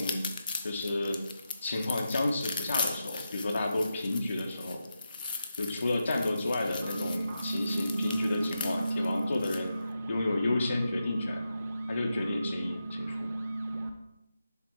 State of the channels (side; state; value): both; inverted; correlation -0.88